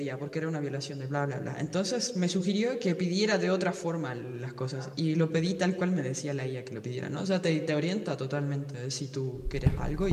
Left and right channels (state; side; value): identical; both; correlation 1.00